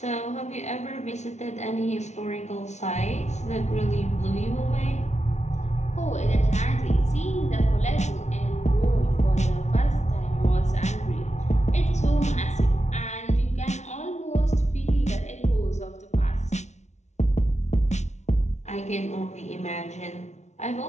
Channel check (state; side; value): late; right; 0.33 ms